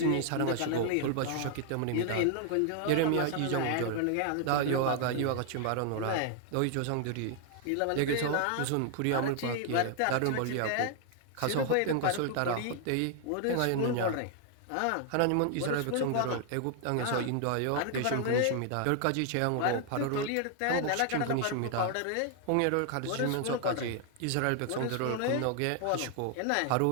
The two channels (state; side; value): different; both; correlation 0.00